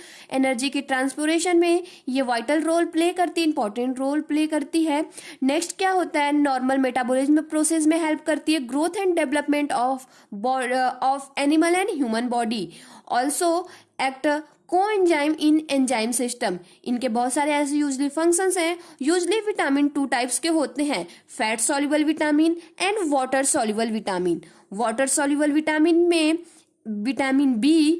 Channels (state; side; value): identical; both; correlation 1.00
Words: Energy के ट्रांसपोरेशन में ये वाइटल रोल प्ले करती है, इंपॉर्टेंट रोल प्ले करती है। नेक्स्ट क्या होता है, नॉर्मल मेटाबॉलिज्म प्रोसेस में हेल्प करती है, growth and development of animal and human body. Also act coenzyme in enzyme system. इनके बहुत सारे ऐसे यूजली फंक्शंस हैं। यूजली विटामिन 2 टाइप्स के होते हैं, fat soluble vitamin and water soluble vitamin. Water soluble vitamin में vitamin